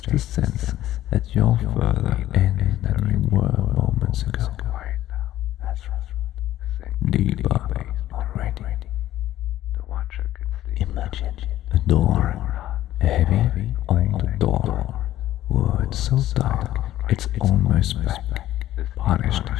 a sense that you're further in than you were moments ago. That's right. Deeper already. Imagine a door, a heavy old door, wood so dark it's almost black, polished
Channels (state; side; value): quieter; right; 13.6 dB